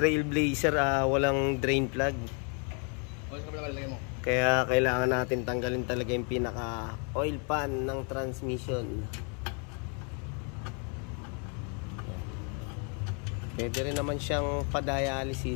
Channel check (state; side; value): quieter; right; 37.8 dB